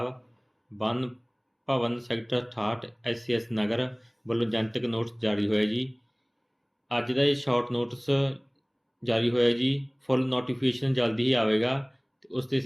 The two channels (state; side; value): identical; both; correlation 1.00